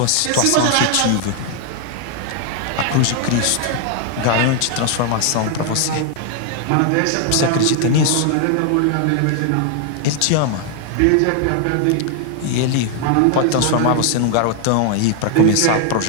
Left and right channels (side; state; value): both; different; correlation 0.00